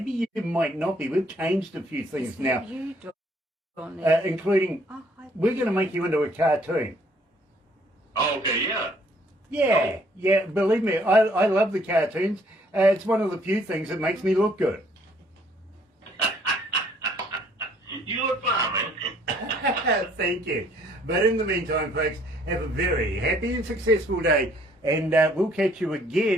you might not be. We've changed a few things now, including we're going to make you into a cartoon. Oh, okay, yeah. Yeah, believe me, I love the cartoons. It's one of the few things that makes me look good. You look fine, man. Thank you. But in the meantime, folks, have a very happy and successful day. And we'll catch you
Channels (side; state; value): both; normal; correlation 0.63